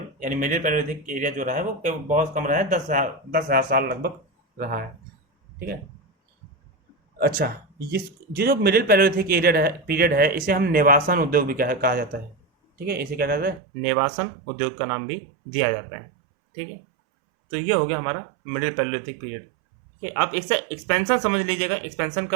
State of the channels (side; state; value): left; drops out; at 13.6 s